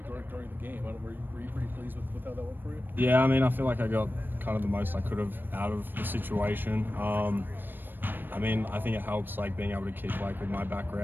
during the game. Were you pretty pleased with how that went for you? yeah, I mean, I feel like I got kind of the most I could have out of the situation. I mean, I think it helps, like, being able to kick, like, with my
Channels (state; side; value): late; left; 0.094 ms